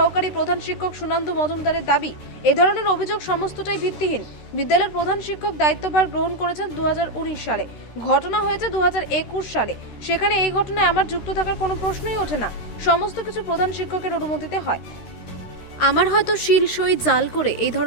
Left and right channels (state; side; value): late; right; 13 ms